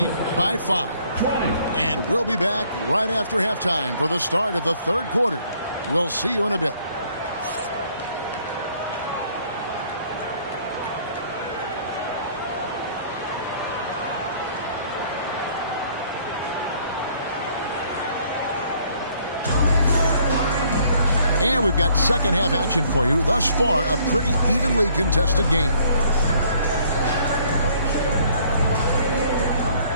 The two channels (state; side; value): inverted; both; correlation -0.62